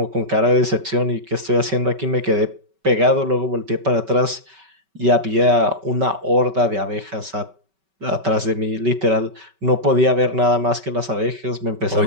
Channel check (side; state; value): left; late; 5.2 ms